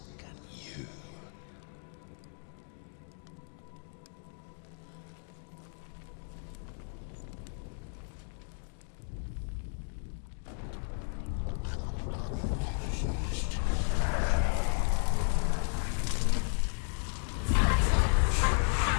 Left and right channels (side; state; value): right; silent; 55 dB below the other